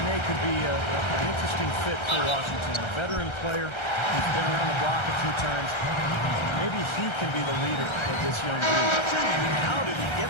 Nene could be an interesting fit for Washington. A veteran player who's been around the block a few times. Maybe he can be the leader of this young group. How did he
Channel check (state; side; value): late; right; 1.3 ms